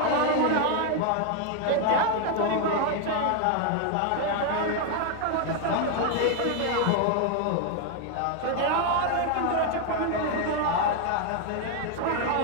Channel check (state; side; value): different; both; correlation 0.01